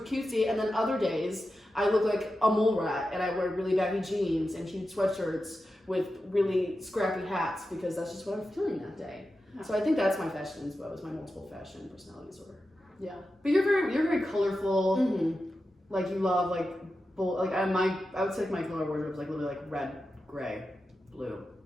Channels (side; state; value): both; normal; correlation 0.91